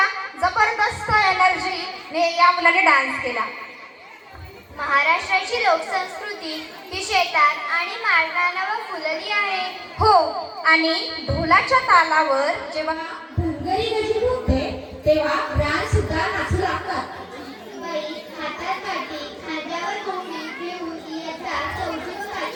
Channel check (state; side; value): identical; both; correlation 1.00